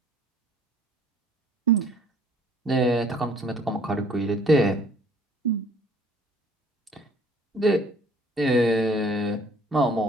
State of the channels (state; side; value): normal; both; correlation 0.56